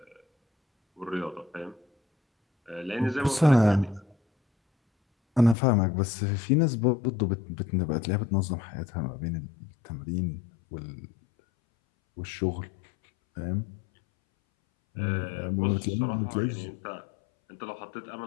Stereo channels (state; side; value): drops out; right; at 5.6 s